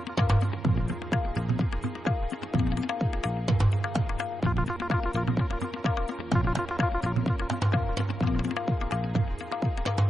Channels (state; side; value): normal; both; correlation 0.89